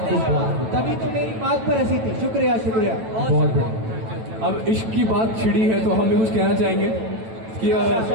खूब। तभी तो मेरी बात पर हंसी थी। शुक्रिया शुक्रिया। बहुत बढ़िया। अब इश्क की बात छिड़ी है तो हम भी कुछ कहना चाहेंगे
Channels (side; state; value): left; late; 9.1 ms